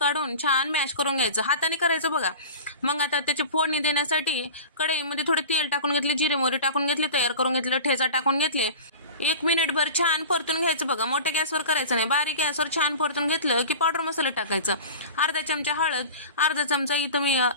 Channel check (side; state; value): both; inverted; correlation -0.34